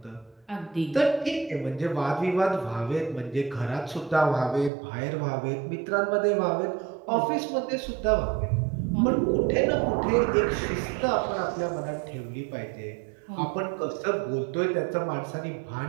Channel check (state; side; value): drops out; left; at 4.7 s